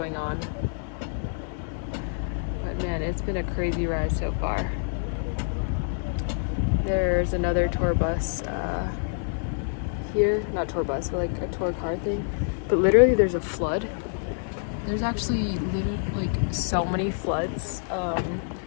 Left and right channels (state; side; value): silent; right; digital silence